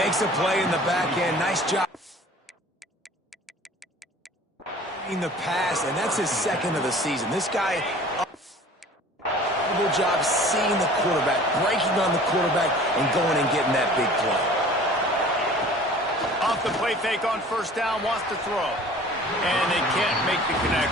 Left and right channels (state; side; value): normal; both; correlation 0.46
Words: a play in the back end. Nice job in the pass, and that's his 2nd of the season. This guy incredible job seeing the quarterback, breaking on the quarterback, and going and getting that big play. Off the play fake on first down, wants to throw. And they can't make the